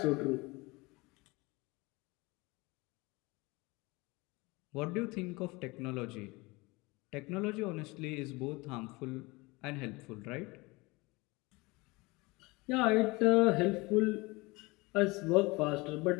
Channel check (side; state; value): right; quieter; 24.1 dB